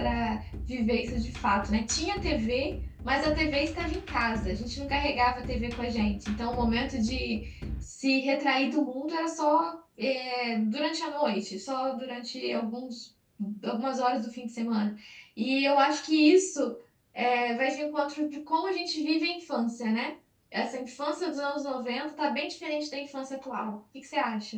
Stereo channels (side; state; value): both; identical; correlation 1.00